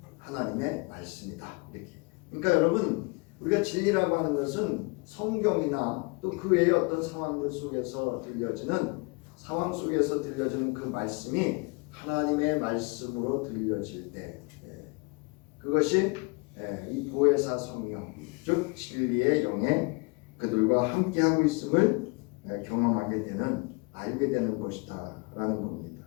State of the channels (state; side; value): quieter; right; 29.6 dB